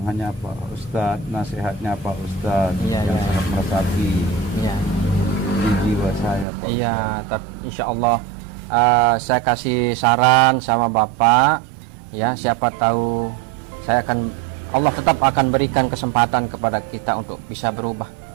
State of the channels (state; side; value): drops out; left; at 6.5 s